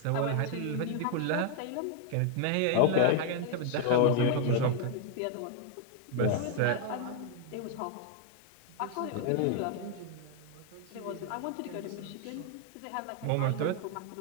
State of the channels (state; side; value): different; both; correlation 0.00